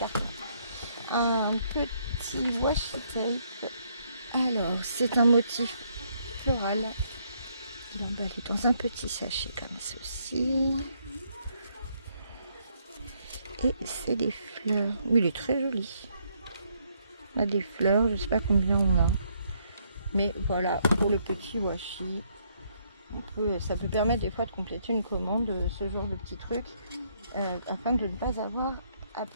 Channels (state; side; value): inverted; both; correlation -0.71